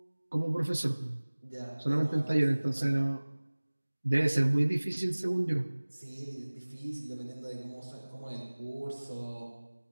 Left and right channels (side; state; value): both; inverted; correlation -1.00